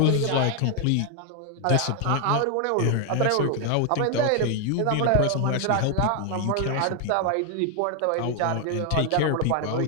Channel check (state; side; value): different; both; correlation 0.00